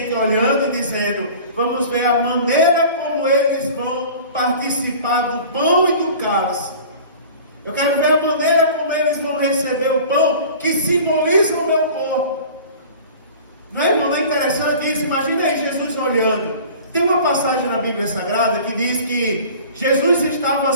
olhando e dizendo, vamos ver a maneira como eles vão participar do pão e do cálice. Eu quero ver a maneira como eles vão receber o pão, que simboliza o meu corpo. Não é, irmão? Não é interessante isso? Imagina aí Jesus olhando. Tem uma passagem na Bíblia Sagrada que diz que Jesus estava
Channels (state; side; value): inverted; both; correlation -0.42